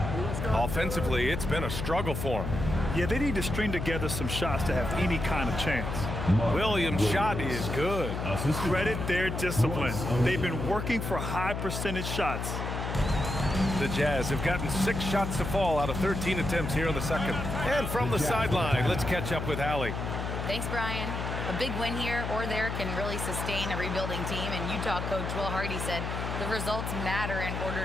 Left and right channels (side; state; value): left; noise; hum, 4 dB below the sound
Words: Offensively, it's been a struggle for him. Yeah, they need to string together some shots to have any kind of chance. Williams' shot is good. Credit their discipline. They've been working for high percentage shots. The Jazz have gotten 6 shots to fall out of 13 attempts here in the second. And from the sideline, let's catch up with Allie. Thanks, Brian. A big win here or there can really sustain a rebuilding team, and Utah coach Will Hardy said the results matter in